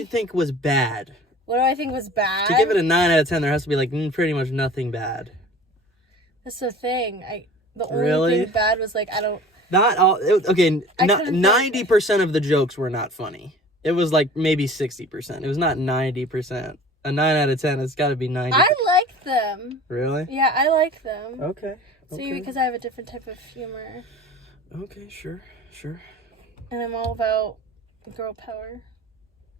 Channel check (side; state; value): both; normal; correlation 0.43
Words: think was bad? What do I think was bad? To give it a 9 out of 10, there has to be pretty much nothing bad. That's the thing. The only thing bad was I don't. Not all. Okay, 90% of the jokes were not funny. It was maybe 60%. It was not 90%. A 9 out of 10, it's got to be 90. I like them. Really? Yeah, I like them. Okay. See, because I have a different type of humor. Okay, sure. And I'm all about girl power.